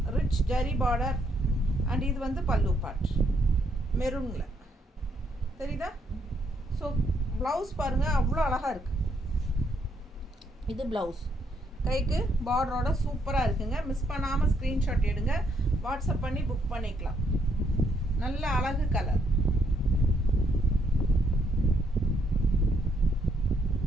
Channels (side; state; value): both; normal; correlation 0.73